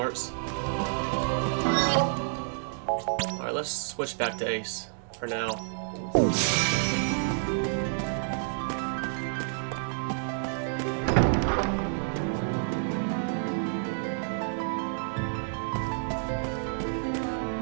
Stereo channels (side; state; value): left; silent; 58 dB below the other